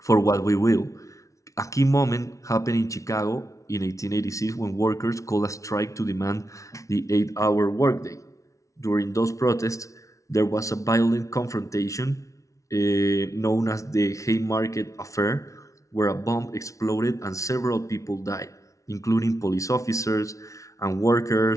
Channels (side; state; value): right; late; 0.15 ms